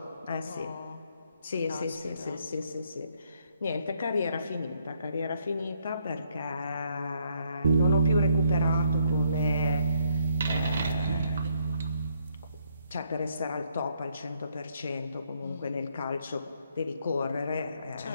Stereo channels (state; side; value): inverted; both; correlation -0.71